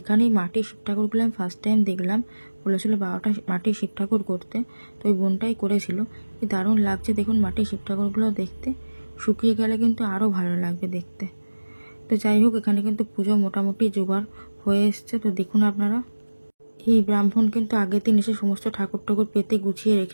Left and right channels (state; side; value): inverted; both; correlation -1.00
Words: এখানে মাটির শিব ঠাকুরগুলো আমি ফার্স্ট টাইম দেখলাম। বলেছিল 12টা মাটির শিব ঠাকুর করতে, তো ওই বোনটাই করেছিল। কি দারুণ লাগছে দেখুন মাটির শিব ঠাকুরগুলো দেখতে। শুকিয়ে গেলে কিন্তু আরও ভালো লাগবে দেখতে। তো যাই হোক, এখানে কিন্তু পুজো মোটামুটি জোগাড় হয়ে এসছে। তো দেখুন আপনারা, এই ব্রাহ্মণ কিন্তু আগের দিন এসে সমস্ত ঠাকুর পেতে গুছিয়ে